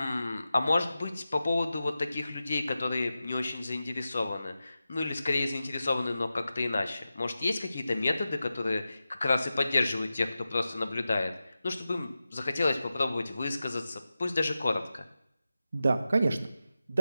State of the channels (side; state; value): both; inverted; correlation -0.93